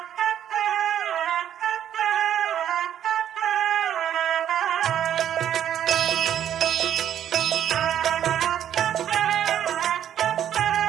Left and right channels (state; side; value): quieter; left; 10.2 dB